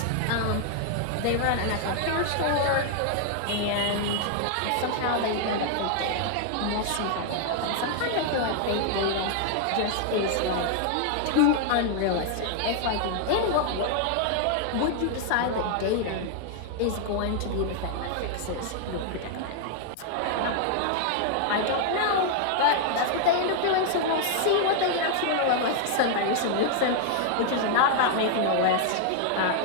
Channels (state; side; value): different; both; correlation 0.00